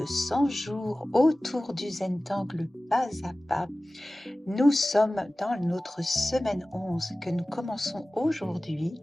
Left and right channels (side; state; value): both; normal; correlation 0.97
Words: 100 jours autour du Zentangle pas à pas. Nous sommes dans notre semaine 11 que nous commençons aujourd'hui